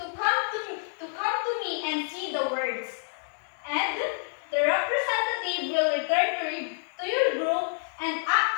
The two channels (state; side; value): silent; right; digital silence